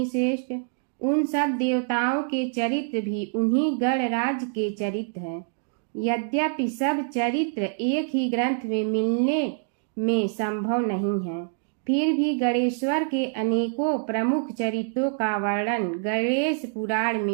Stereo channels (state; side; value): silent; left; digital silence